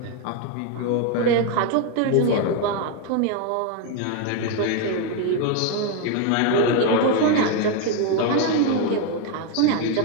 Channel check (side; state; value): both; different; correlation 0.01